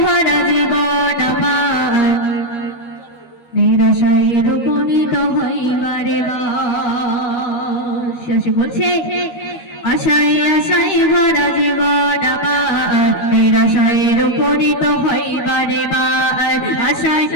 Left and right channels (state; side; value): late; right; 13 ms